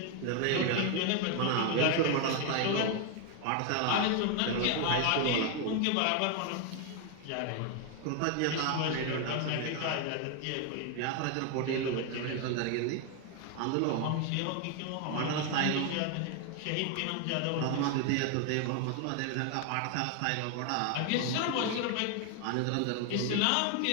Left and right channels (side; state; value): both; different; correlation 0.01